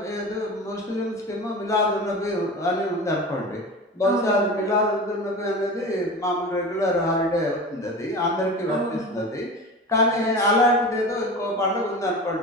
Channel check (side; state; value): both; normal; correlation 0.32